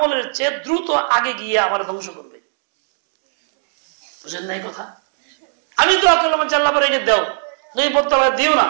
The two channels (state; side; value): silent; left; 66 dB below the other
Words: চেয়ে দ্রুত আগে গিয়ে আমার ধ্বংস করবে। বুঝেন না এই কথা? আমি দোয়া করলাম যে আল্লাহ পরে দাও, নবী বদদোয়া দিও না,